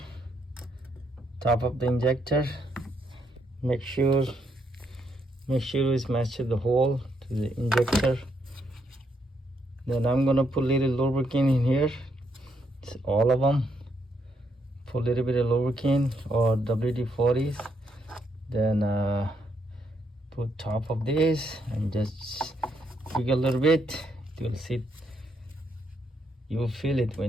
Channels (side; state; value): both; normal; correlation 0.76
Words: top of the injector. Make sure it's matched the hole to the injector. Then I'm gonna put a little lubricant in here. It's all of them. Put a little bit of lubricant or WD-40s. Then put top of this and just jiggle a little bit. You'll see. You will feel it